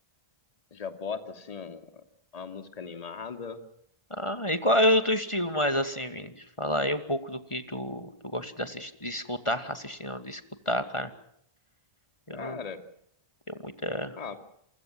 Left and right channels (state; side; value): late; right; 1.4 ms